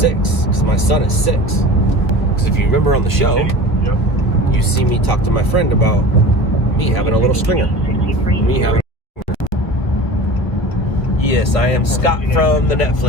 Because my son is 6. Because if you remember on the show, you see me talk to my friend about me having a little stringer. Me having a stringer. Yes, I am Scott from the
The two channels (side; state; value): right; late; 1.4 ms